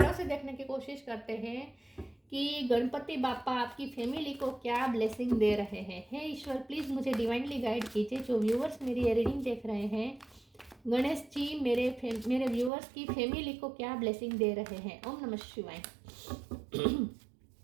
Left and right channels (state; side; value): drops out; left; at 12.7 s